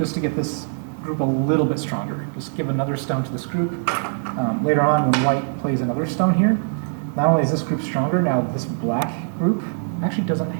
to get this group a little bit stronger. Just give another stone to this group. Later on, when white plays another stone here, not only is this group stronger, now this black group actually doesn't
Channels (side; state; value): left; silent; digital silence